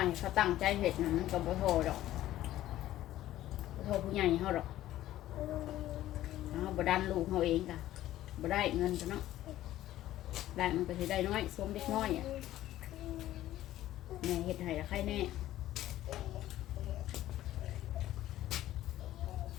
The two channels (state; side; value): quieter; right; 14.1 dB